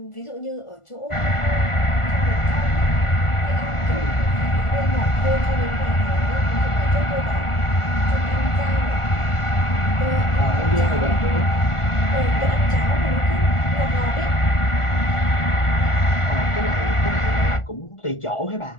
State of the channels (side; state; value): right; late; 1.4 ms